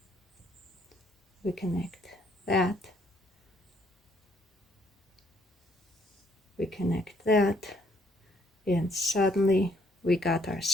We connect that. We connect that. And suddenly we got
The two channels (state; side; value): normal; both; correlation 0.67